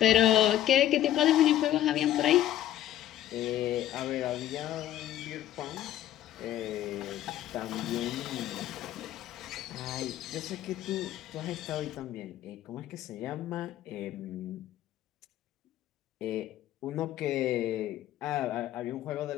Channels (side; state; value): right; quieter; 12.6 dB